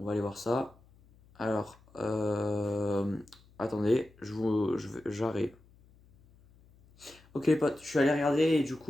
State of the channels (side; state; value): left; noise; hum, 28 dB below the sound